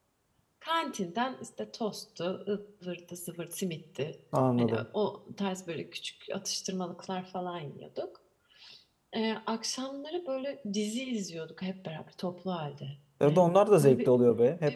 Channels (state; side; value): identical; both; correlation 1.00